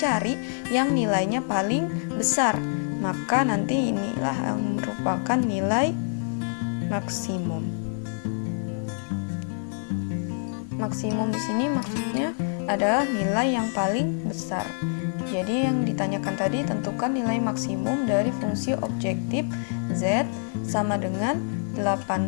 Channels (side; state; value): right; silent; digital silence